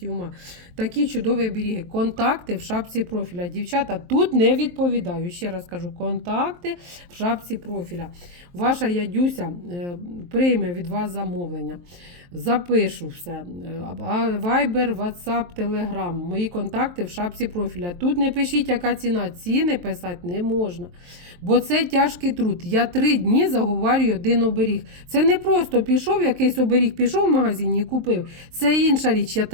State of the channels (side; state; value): left; late; 23 ms